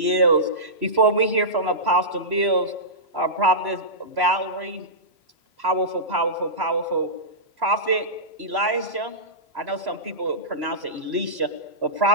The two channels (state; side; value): late; left; 3.0 ms